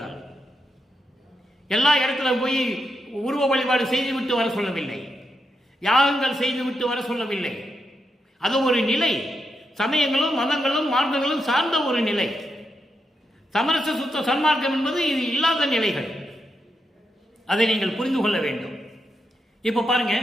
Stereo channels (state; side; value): normal; both; correlation 0.84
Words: எல்லா இடத்துல போய் உருவ வழிபாடு செய்துவிட்டு வர சொல்லவில்லை, யாகங்கள் செய்துவிட்டு வர சொல்லவில்லை. அது ஒரு நிலை, சமயங்களும் மதங்களும் மார்க்கங்களும் சார்ந்த ஒரு நிலை. சமரச சுத்த சன்மார்க்கம் என்பது இது இல்லாத நிலைகள், அதை நீங்கள் புரிந்து கொள்ள வேண்டும். இப்போ பாருங்க,